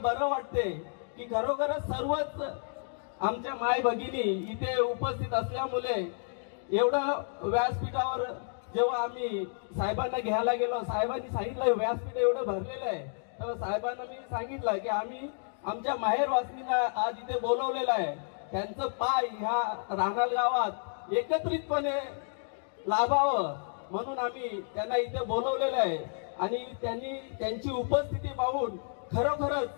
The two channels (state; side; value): silent; right; digital silence